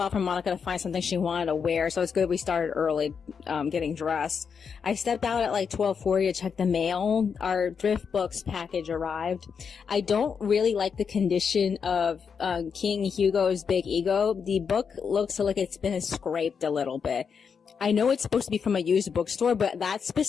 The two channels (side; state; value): right; quieter; 6.3 dB